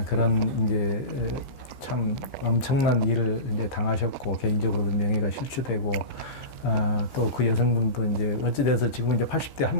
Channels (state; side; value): late; right; 14 ms